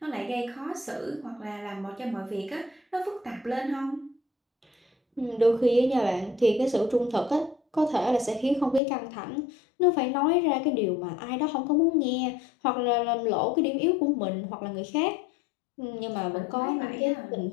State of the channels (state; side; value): drops out; right; at 8.8 s